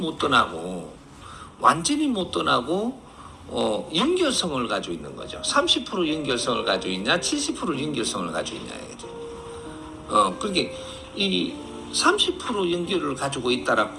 떠나고 연결성을 가지고 있는 거죠. 30% 연결성을 가지고 있냐, 70% 연결성을 가지고 있냐 이거죠. 그게 이 30% 연결을 가지고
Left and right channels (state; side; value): identical; both; correlation 1.00